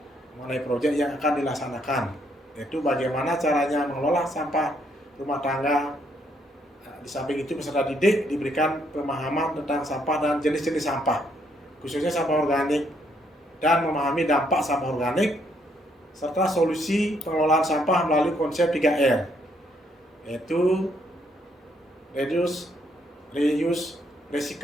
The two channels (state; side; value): normal; both; correlation 0.72